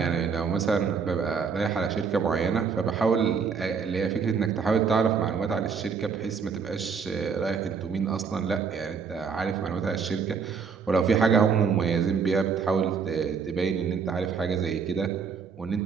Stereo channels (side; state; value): left; quieter; 5.9 dB